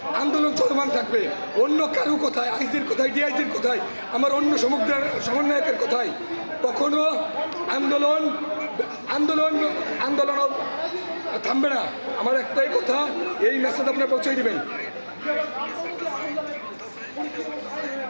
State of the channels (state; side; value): inverted; both; correlation -1.00